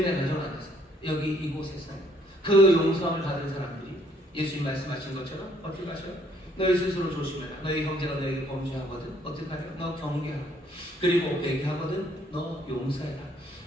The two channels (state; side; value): normal; both; correlation 0.65